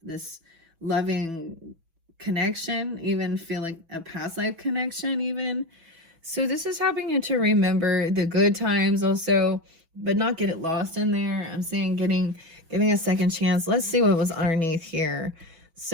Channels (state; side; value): late; left; 6.1 ms